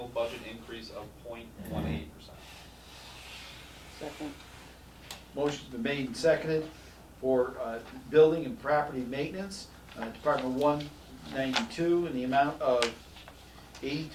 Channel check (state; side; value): identical; both; correlation 1.00